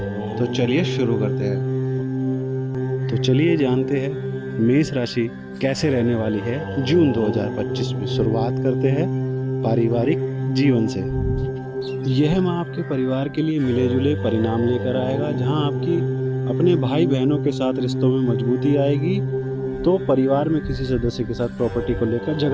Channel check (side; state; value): both; identical; correlation 1.00